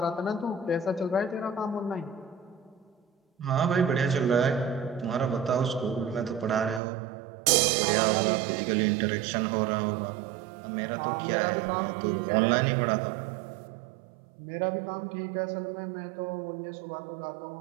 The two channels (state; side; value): drops out; left; at 6.8 s